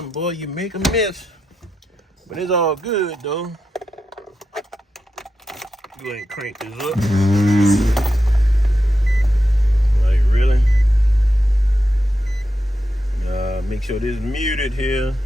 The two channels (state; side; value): normal; both; correlation 0.87